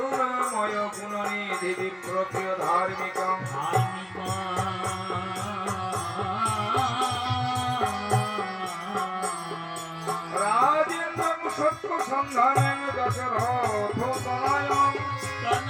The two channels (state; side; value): identical; both; correlation 1.00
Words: गुणनिधि विप्रप्रिय धार्मिकं राजेन्द्रं सत्य सन्धानं दशरथ तनयं